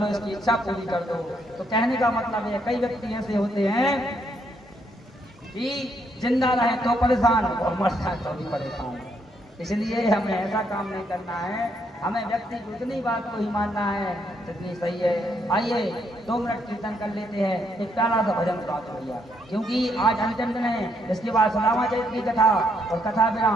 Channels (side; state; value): both; normal; correlation 0.74